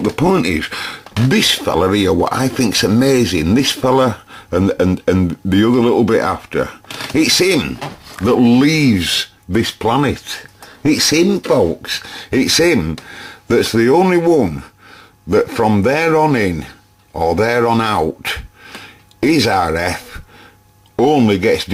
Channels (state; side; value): identical; both; correlation 1.00